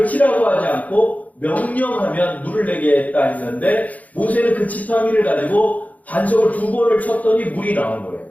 치라고 하지 않고 명령하면 물을 내게 했다 했는데 모세는 그 지팡이를 가지고 반석을 2번을 쳤더니 물이 나온 거예요.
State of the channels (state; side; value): late; right; 0.074 ms